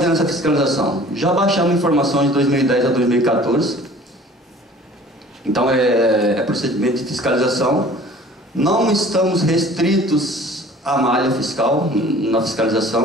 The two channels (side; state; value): both; normal; correlation 0.48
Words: nessa fiscalização? Já baixamos informações de 2010 a 2014. Então é procedimento de fiscalização. Não estamos restritos à malha fiscal na